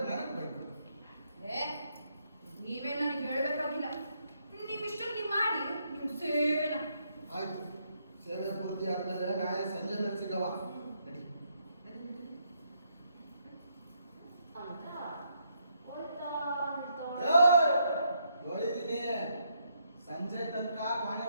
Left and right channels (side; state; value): both; inverted; correlation -0.76